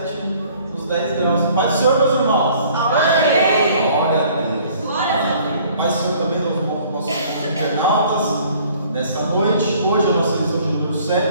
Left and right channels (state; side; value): inverted; both; correlation -0.56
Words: nos 10 graus. Paz do Senhor, meus irmãos. Amém. Glória a Deus. Paz do Senhor também, nossos internautas. Nessa noite, hoje é a nossa lição de número